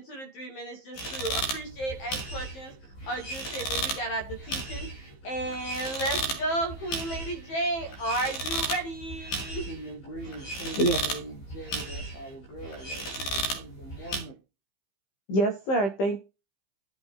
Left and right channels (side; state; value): right; late; 15 ms